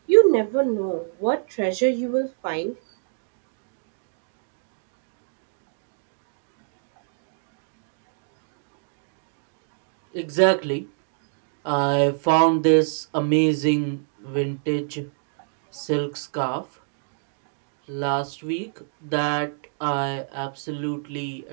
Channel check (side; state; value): left; silent; digital silence